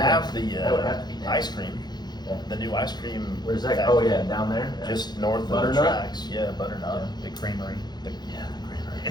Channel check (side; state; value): right; late; 0.20 ms